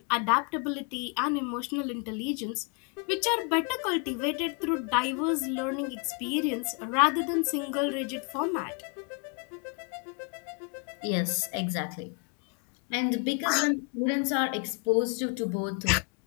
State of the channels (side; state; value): right; quieter; 34.3 dB